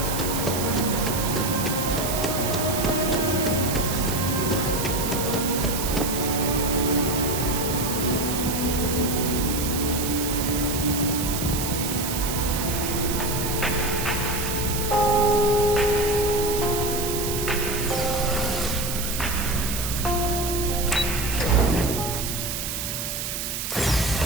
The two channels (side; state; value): right; noise; hiss, 4 dB below the sound